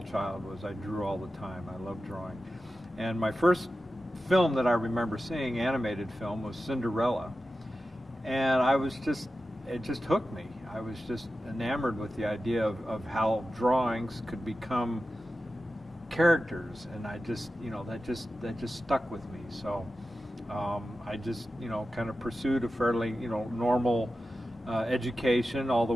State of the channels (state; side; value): normal; both; correlation 0.93